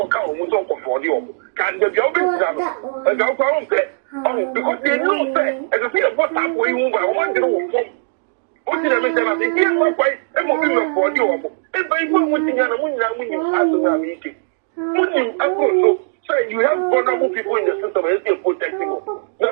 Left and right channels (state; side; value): silent; left; digital silence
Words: who's on for you. Can the job is done? And I'll go on there. Oh, because they know that, as I say, what's up where you move, I want to know what did I make them? I think, here's my wife, and what will for you. And by one thing, and when you ask them, meeting. When you also say you have vulnerable people in the system, and you're protecting them. Now,